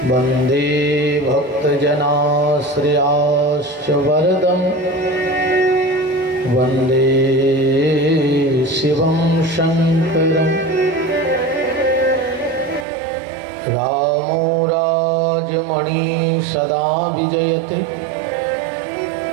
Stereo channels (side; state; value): left; drops out; at 12.9 s